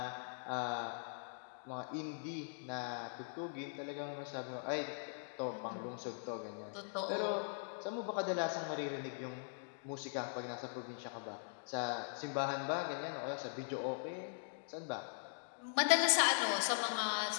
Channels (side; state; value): right; silent; digital silence